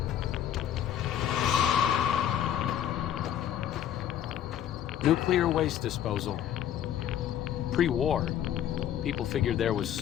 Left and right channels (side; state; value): right; quieter; 10.5 dB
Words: Nuclear waste disposal. Pre-war, people figured there was